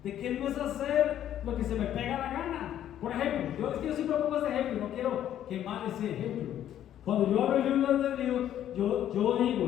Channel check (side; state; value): right; quieter; 11.1 dB